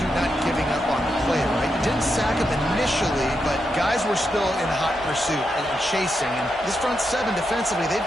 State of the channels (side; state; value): both; normal; correlation 0.85